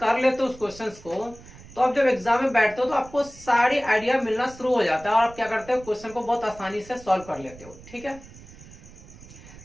लेते हो उस क्वेश्चन को तो आप जब एग्जाम में बैठते हो तो आपको सारी आइडिया मिलना शुरू हो जाता है और आप क्या करते हो क्वेश्चन को बहुत आसानी से सॉल्व कर लेते हो, ठीक है।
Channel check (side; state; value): right; noise; rumble, 19 dB below the sound